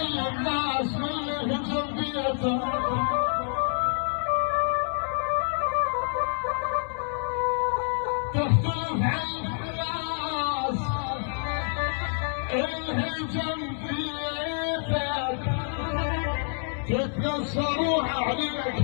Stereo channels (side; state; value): right; silent; 60 dB below the other